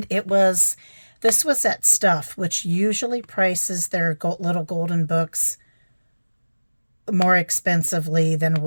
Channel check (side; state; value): both; inverted; correlation -1.00